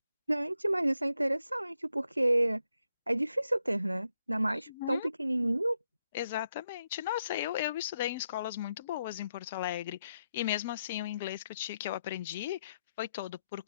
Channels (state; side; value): inverted; both; correlation -0.82